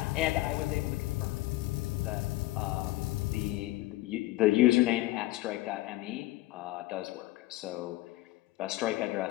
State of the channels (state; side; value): quieter; right; 18.2 dB